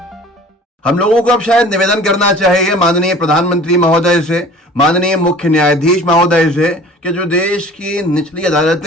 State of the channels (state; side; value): normal; both; correlation 0.46